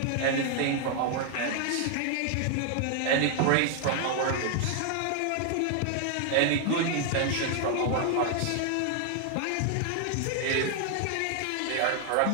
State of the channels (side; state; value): both; different; correlation 0.00